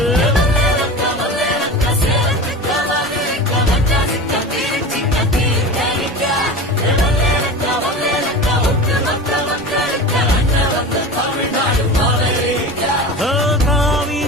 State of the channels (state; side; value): normal; both; correlation 0.31